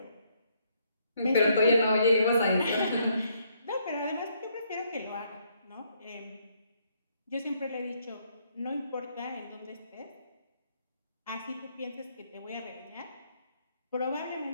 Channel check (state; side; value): inverted; both; correlation -0.71